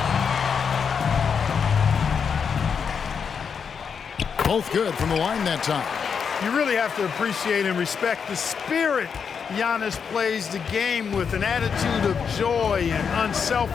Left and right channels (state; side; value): quieter; right; 6.5 dB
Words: Both good from the line that time. You really have to appreciate and respect the spirit Giannis plays the game with, an attitude of joy and